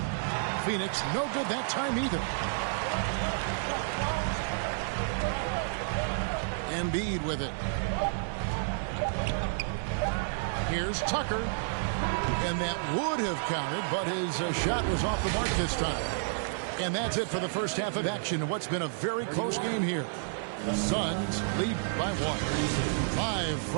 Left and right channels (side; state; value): left; silent; digital silence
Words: Phoenix no good that time either. Embiid with it. Here's Tucker. And that would have counted, but his shot was off the mark this time. And that's it for the first half of action. What's been a very close game here. The Suns lead by 1. Live